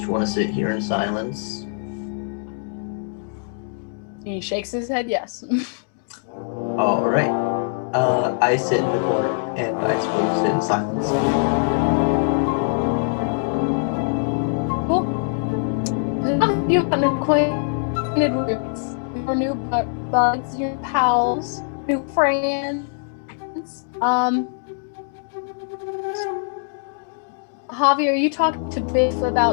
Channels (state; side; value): silent; right; digital silence